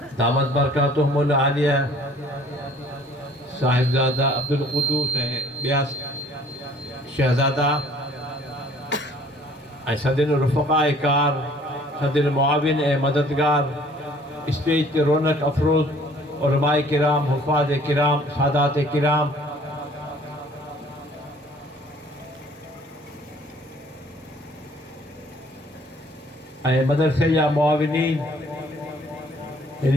दामत बरकातुहुमुल आलिया साहिबज़ादा अब्दुल क़ुद्दूस ऐं ॿिया शहज़ादा ऐं सदिन रुफ़क़ाए कार सदिन मुआविन ऐं मददगार स्टेज ते रौनक अफ़रोज़ उलमाए किराम हुफ़ाज़ किराम सादात किराम ऐं मदरसे जा मुआविनीन हिन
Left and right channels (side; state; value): both; normal; correlation 0.56